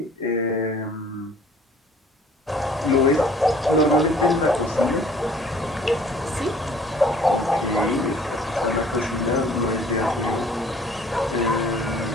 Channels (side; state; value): both; normal; correlation 0.54